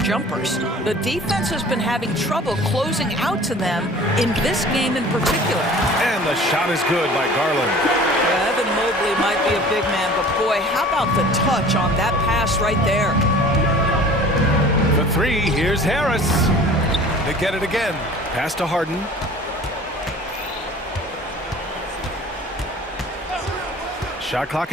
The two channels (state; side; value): normal; both; correlation 0.45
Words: The defense has been having trouble closing out to them in this game in particular. And the shot is good by Garland. Yeah, Evan Mobley might be a big man, but boy, how about the touch on that pass right there? The three, here's Harris. They get it again. Pass to Harden. Shot clock